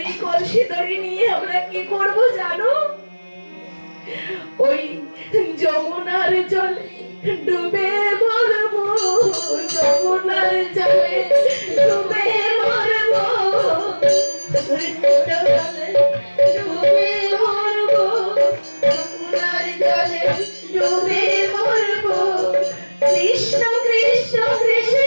এই কলসি দড়ি নিয়ে আমরা কি করব জানো? ওই যমুনার জলে ডুবে মরবো, যমুনার জলে ডুবে মরবো, ডুবে মরবো, যমুনার জলে ডুবে মরবো। কৃষ্ণ কৃষ্ণ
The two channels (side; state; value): both; inverted; correlation -1.00